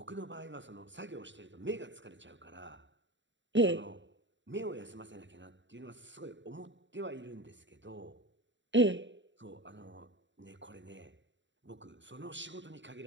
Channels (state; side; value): late; left; 0.54 ms